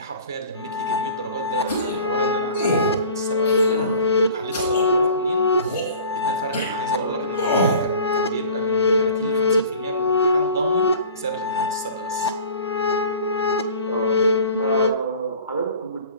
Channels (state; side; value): inverted; both; correlation -0.44